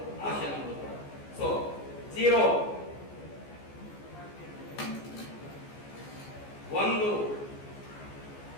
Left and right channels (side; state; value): right; late; 14 ms